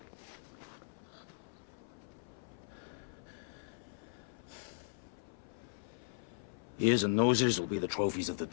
Ears and noses will be the trophies of the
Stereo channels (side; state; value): right; silent; 52 dB below the other